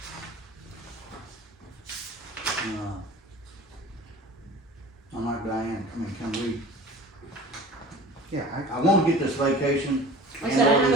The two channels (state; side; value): normal; both; correlation 0.41